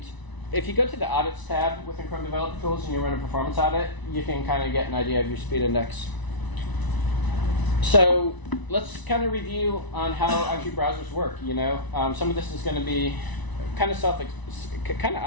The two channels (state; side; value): late; right; 1.0 ms